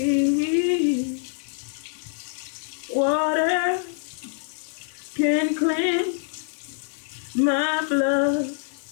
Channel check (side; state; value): right; silent; 62 dB below the other